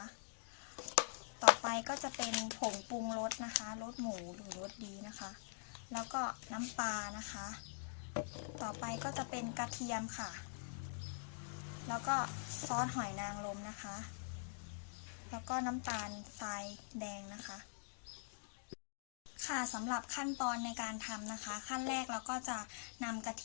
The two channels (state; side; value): silent; right; digital silence